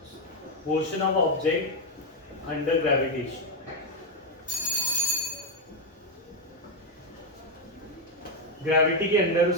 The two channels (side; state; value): both; normal; correlation 0.02